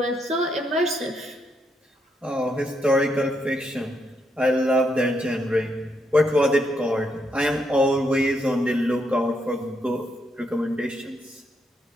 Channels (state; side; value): normal; both; correlation 0.78